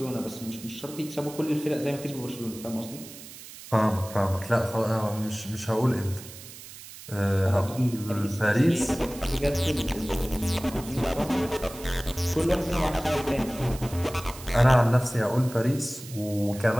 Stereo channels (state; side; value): noise; right; hiss, 15 dB below the sound